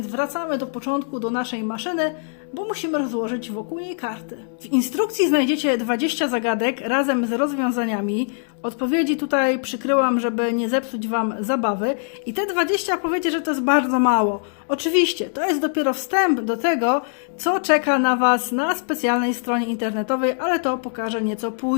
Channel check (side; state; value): right; silent; 59 dB below the other